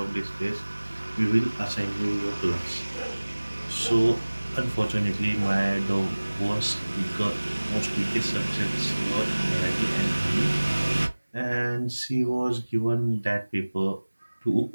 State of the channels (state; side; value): inverted; both; correlation -1.00